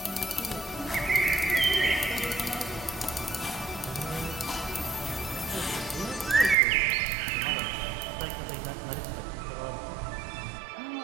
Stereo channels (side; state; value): left; drops out; at 6.6 s